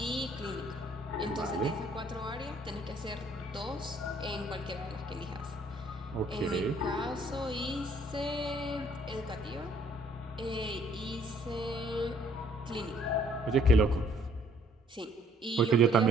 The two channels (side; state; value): both; normal; correlation 0.62